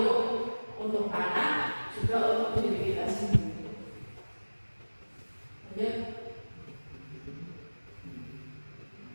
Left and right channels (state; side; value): inverted; both; correlation -1.00